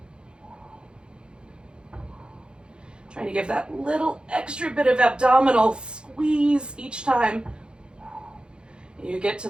Trying to give that little extra bit of abdominal squeeze each time you get to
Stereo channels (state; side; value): late; left; 0.052 ms